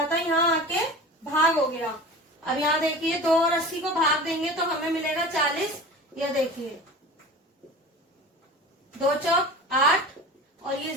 था, यहाँ आके भाग हो गया। अब यहाँ देखिए, 2 और 80 को भाग देंगे तो हमें मिलेगा 40। ये देखिए, 2 चौक 8 और ये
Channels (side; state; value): both; normal; correlation 0.36